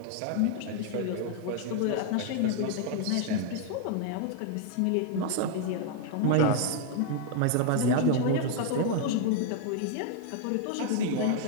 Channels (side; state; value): both; different; correlation 0.00